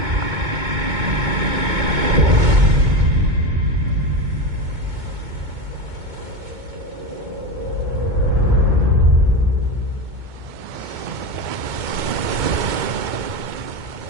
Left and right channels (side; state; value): left; late; 2.2 ms